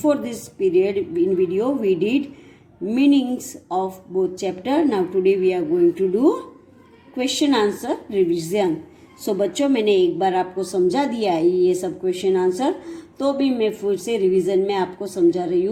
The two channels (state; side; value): identical; both; correlation 1.00